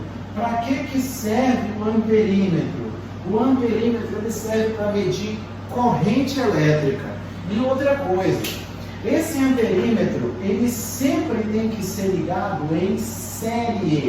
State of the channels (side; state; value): both; identical; correlation 1.00